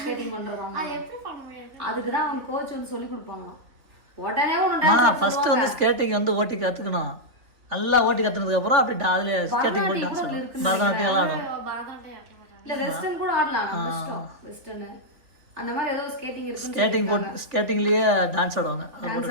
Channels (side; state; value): left; late; 3.2 ms